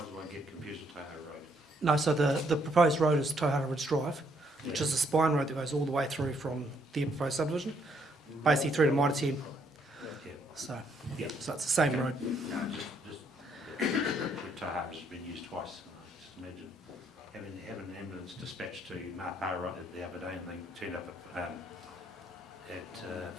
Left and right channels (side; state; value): both; normal; correlation 0.70